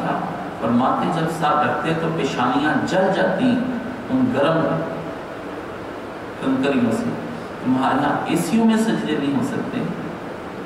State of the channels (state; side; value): identical; both; correlation 1.00